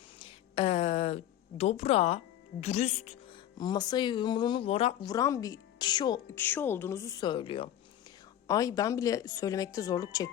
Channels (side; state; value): right; quieter; 11.6 dB